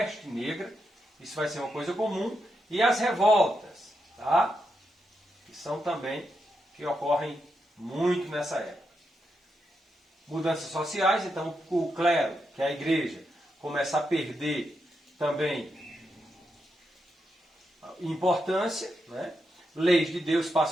negra, isso vai ser uma coisa comum, e as revoltas, tá? Que são também, que ocorrem muito nessa época. Mudanças sociais, então o clero, que é a igreja, começa a perder também importância, né? Leis de Deus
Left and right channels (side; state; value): both; normal; correlation 0.84